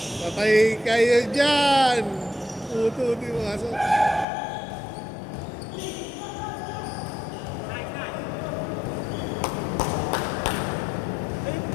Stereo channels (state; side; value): drops out; right; at 4.2 s